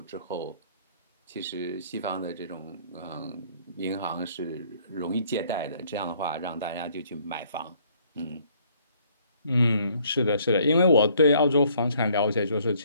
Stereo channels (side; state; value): both; inverted; correlation -0.62